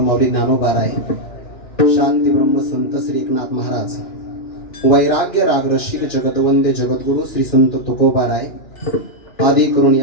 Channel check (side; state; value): right; late; 2.6 ms